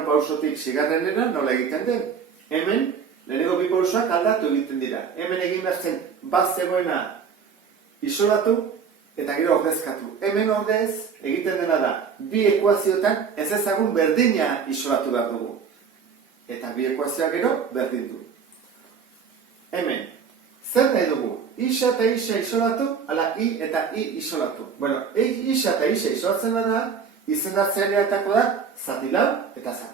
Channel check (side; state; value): left; quieter; 6.3 dB